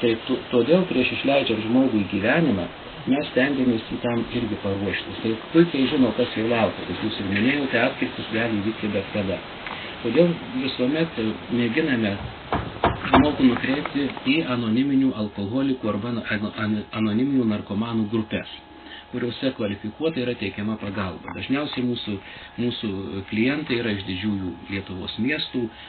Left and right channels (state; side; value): identical; both; correlation 1.00